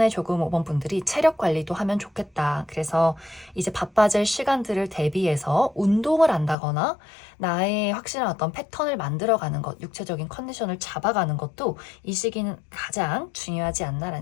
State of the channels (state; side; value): drops out; right; at 6.6 s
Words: 조금 5번 분들이 체력 관리도 하면 좋겠다. 그래서 이제 바빠질 시간들을 대비해서 운동을 한다거나 나의 확실한 어떤 패턴을 만들어가는 것, 육체적인 컨디션을 잡아가는 것도 이 시기는 가장 중요하지